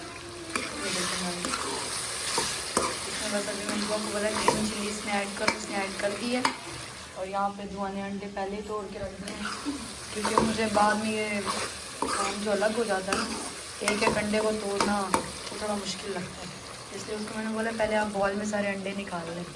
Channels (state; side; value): identical; both; correlation 1.00